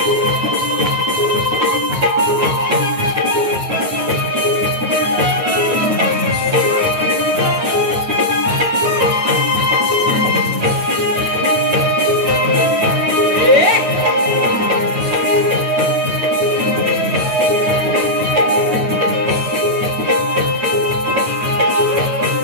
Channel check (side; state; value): left; late; 9.3 ms